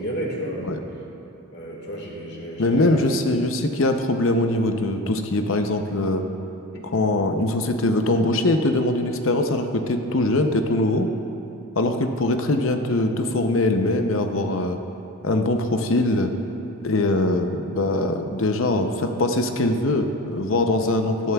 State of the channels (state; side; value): normal; both; correlation 0.31